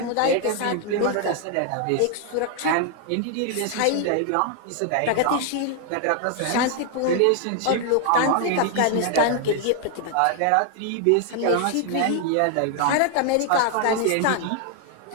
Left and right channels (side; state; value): both; different; correlation 0.00